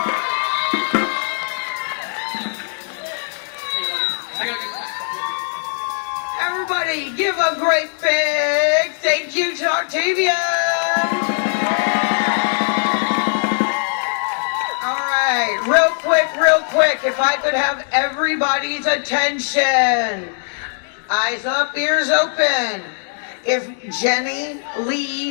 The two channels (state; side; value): silent; right; 66 dB below the other